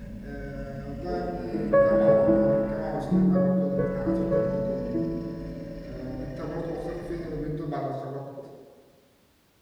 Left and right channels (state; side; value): identical; both; correlation 1.00